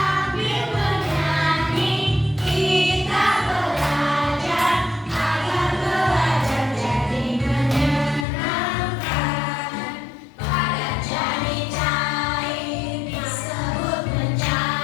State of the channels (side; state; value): right; drops out; at 8.2 s